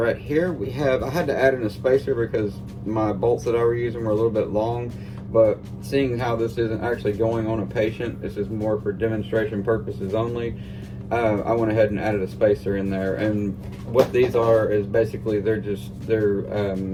here. We have, I had to add in a spacer because my bolts that I were using were a little bit long, but seeing how this isn't actually going on a patient, this is more for demonstration purposes only, I went ahead and added a spacer in there. And what these are is basically they're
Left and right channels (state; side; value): identical; both; correlation 1.00